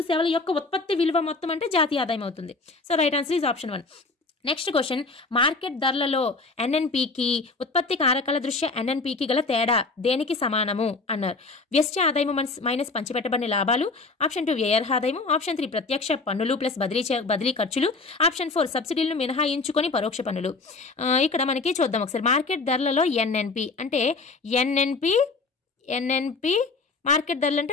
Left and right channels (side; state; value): right; quieter; 3.8 dB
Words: సేవల యొక్క ఉత్పత్తి విలువ మొత్తం అంటే జాతీయ ఆదాయం అవుతుంది. So right answer is option 1. Next question, market ధరలలో ఎన్ఎన్పికి ఉత్పత్తి కారకాల దృష్ట్యా ఎన్ఎన్పికి గల తేడా దేనికి సమానము అన్నారు. వ్యష్టి ఆదాయము మైనస్ పంచిపెట్టబడిన లాభాలు, ఆప్షన్ 2 వ్యయార్హ ఆదాయము, ఆప్షన్ 3 ప్రత్యక్ష పన్నులు ప్లస్ బదిలీ ఖర్చులు, ఆప్షన్ 4 సబ్సిడీలను మినహాయించుకొని పరోక్ష పన్నులు. ఇక్కడ మనకి చూద్దాం ఒకసారి. మార్కెట్ ధరలలో ఎన్ఎన్పి అంటే ఎన్ఎన్పి మార్కెట్ ధరలు